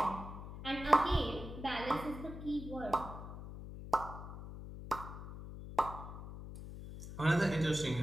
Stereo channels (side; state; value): left; noise; hum, 10 dB below the sound